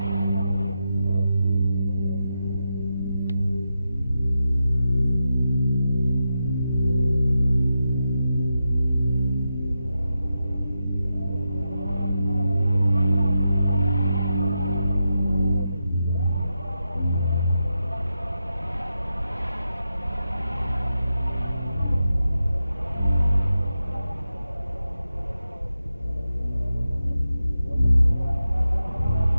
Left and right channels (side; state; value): both; inverted; correlation -0.88